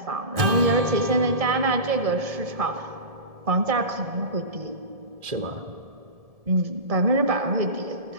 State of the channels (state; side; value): late; left; 1.7 ms